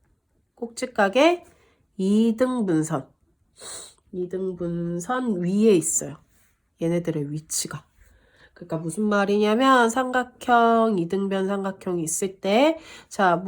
이등분선 위에 있어요. 얘네들의 위치가. 그러니까 무슨 말이냐면 삼각형, 이등변 삼각형이 있을 때, 자,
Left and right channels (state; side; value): identical; both; correlation 1.00